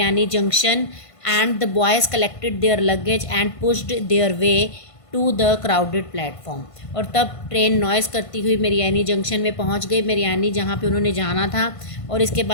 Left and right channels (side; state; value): right; late; 1.5 ms